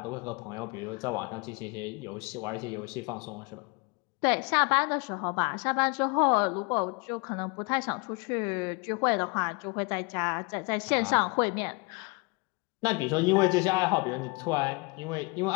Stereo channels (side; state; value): right; quieter; 29.0 dB